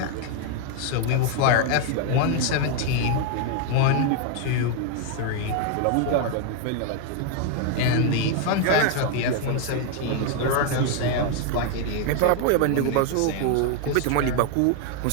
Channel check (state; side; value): different; both; correlation 0.00